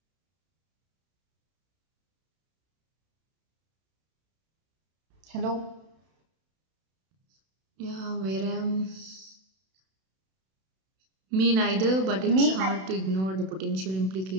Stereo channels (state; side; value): late; left; 32 ms